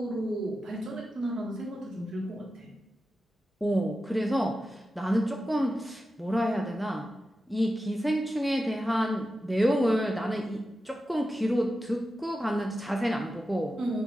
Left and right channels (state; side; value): normal; both; correlation 0.91